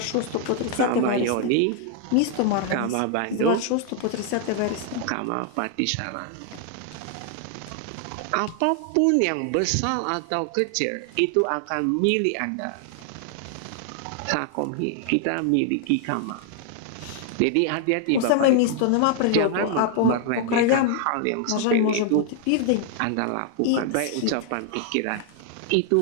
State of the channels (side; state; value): both; different; correlation 0.00